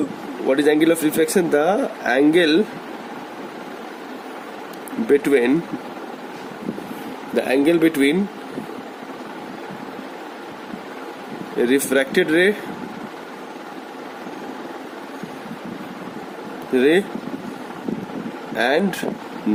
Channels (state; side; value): identical; both; correlation 1.00